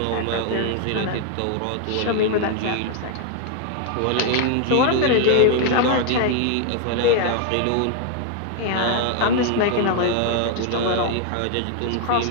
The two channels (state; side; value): different; both; correlation 0.00